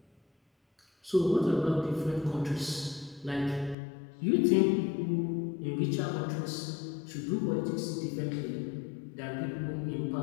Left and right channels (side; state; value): right; drops out; at 3.8 s